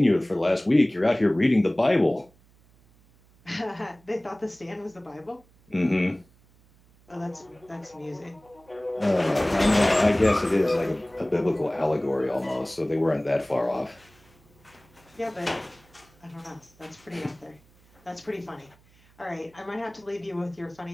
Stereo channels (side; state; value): right; noise; hum, 30 dB below the sound